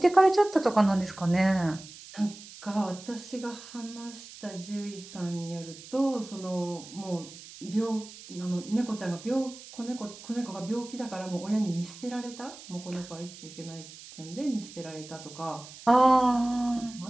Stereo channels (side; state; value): right; noise; hiss, 16 dB below the sound